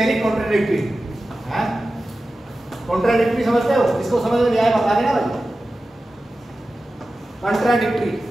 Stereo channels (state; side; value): normal; both; correlation 0.94